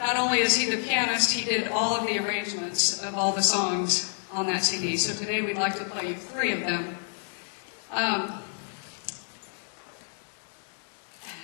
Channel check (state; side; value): silent; right; 59 dB below the other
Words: only is he the pianist, he did all of the arrangements of all the songs on that CD. So today we'd like to play you 3 of them.